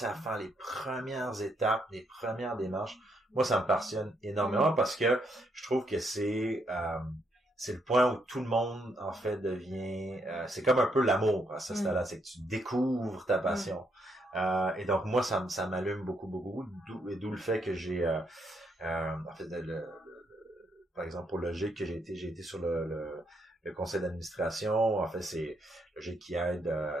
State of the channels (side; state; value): both; normal; correlation 0.76